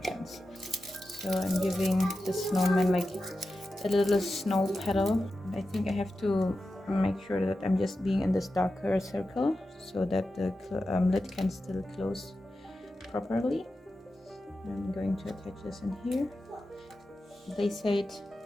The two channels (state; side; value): normal; both; correlation 0.92